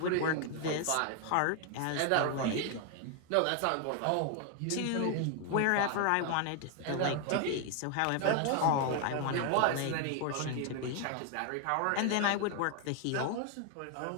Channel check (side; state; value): both; different; correlation 0.01